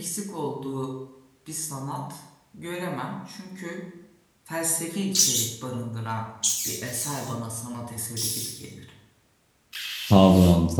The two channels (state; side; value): identical; both; correlation 1.00